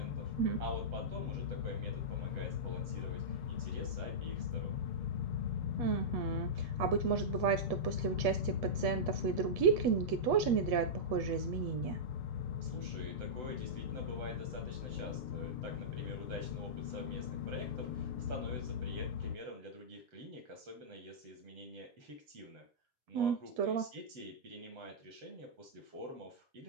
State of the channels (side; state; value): left; late; 8.3 ms